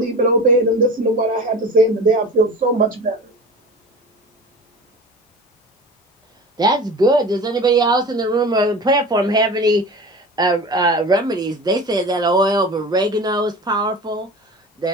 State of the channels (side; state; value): both; normal; correlation 0.35